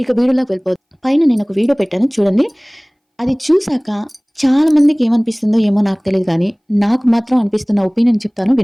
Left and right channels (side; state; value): both; identical; correlation 1.00